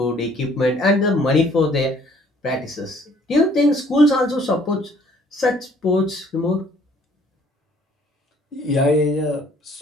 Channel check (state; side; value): normal; both; correlation 0.60